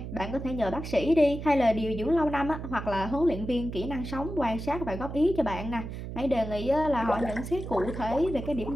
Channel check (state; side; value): noise; right; hum, 8 dB below the sound